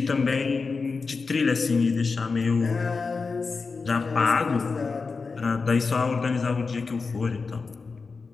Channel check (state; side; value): quieter; right; 4.5 dB